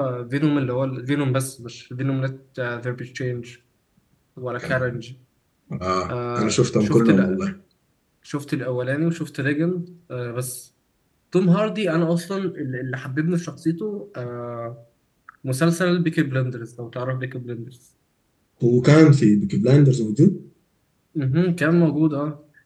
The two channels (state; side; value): identical; both; correlation 1.00